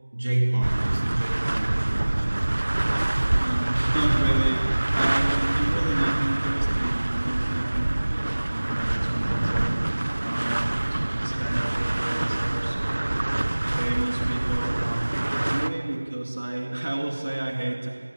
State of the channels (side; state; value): both; inverted; correlation -1.00